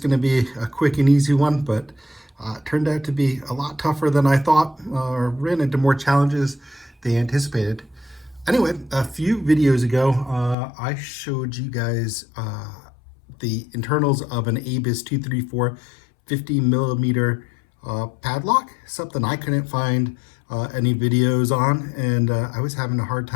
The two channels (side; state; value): right; drops out; at 10.6 s